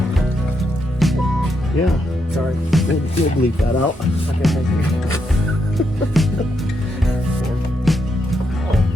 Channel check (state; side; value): normal; both; correlation 0.80